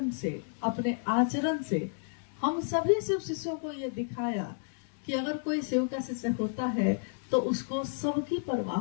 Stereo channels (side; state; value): right; silent; digital silence